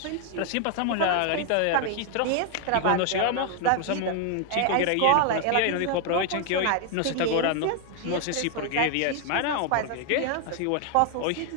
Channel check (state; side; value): different; both; correlation 0.00